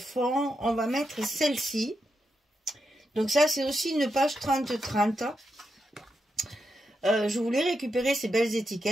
on va mettre celle-ci. Donc ça, c'est aussi une page 30-30. Je voulais récupérer ces belles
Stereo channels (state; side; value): normal; both; correlation 0.85